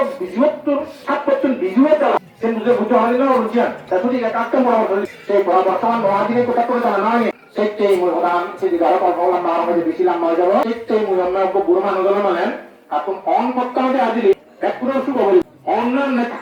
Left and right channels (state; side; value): identical; both; correlation 1.00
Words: ৭% বিজুয়ে তারা সে বুঝে বুঝতে হয় না রুচিয়ান তা সঠিক একটা পরামর্শ সেই বর্তমান মহাদিনে কোথা করে তারা নয় সেটাই মূল প্রধান সেদিকে আরো কথা বললাম আমার মধ্যে বেশি লম্বা হয়ে যাবো সেটাই মূল আমরা বুড়ো মানুষ মানেন এখন অন করতে হবে আজিলি একটু শুভ বলি অন্যান্য